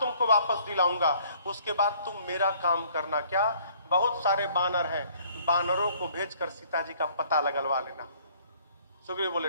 वापस दिलाऊंगा, उसके बाद तुम मेरा काम करना। क्या? बहुत सारे बानर हैं, बानरों को भेजकर सीता जी का पता लगलवा लेना। सुग्रीव बोले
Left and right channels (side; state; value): both; inverted; correlation -0.59